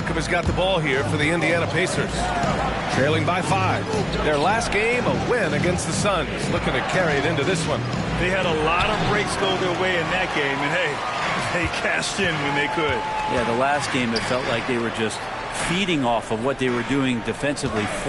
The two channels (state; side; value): identical; both; correlation 1.00